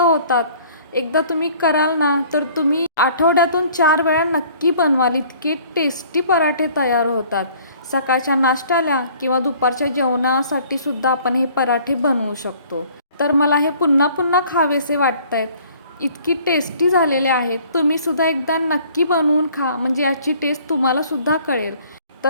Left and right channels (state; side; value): inverted; both; correlation -0.55